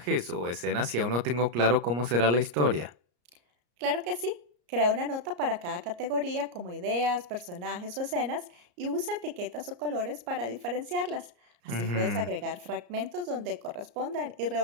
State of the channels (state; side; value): late; left; 34 ms